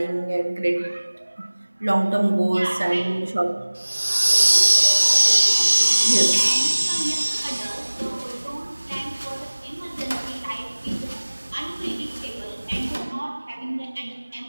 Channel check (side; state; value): both; inverted; correlation -1.00